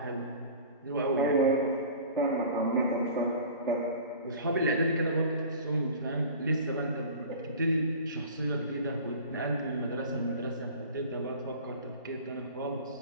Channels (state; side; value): inverted; both; correlation -0.41